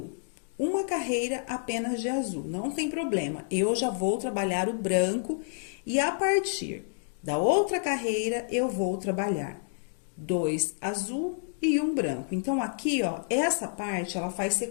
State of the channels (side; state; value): right; silent; digital silence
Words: Uma carreira apenas de azul, não tem problema. Eu já vou trabalhar o branco e a partir da outra carreira eu vou trabalhar 2 azul e 1 branco. Então, aqui, ó, essa parte, ela faz